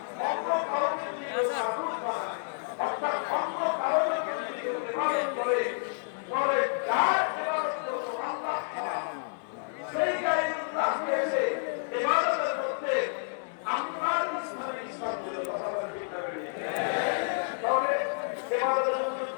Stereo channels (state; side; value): silent; right; digital silence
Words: অন্য কাউকে যদি মাবুদ বানায়, অর্থাৎ অন্য কাউকে যদি ইবাদত করে, তবে যার ইবাদত করবো আল্লাহ ছাড়া সেই গায়রুল্লাহকে এসে ইবাদতের মধ্যে আল্লাহর ইসলামের ইসলাম দিল। কথা বলেন ঠিক না? তবে ইবাদতের